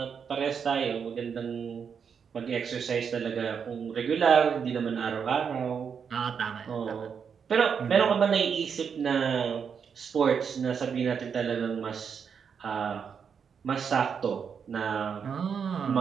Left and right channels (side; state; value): left; quieter; 6.8 dB